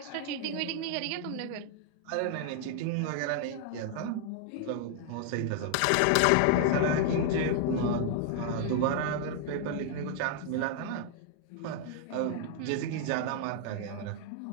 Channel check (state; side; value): different; both; correlation 0.00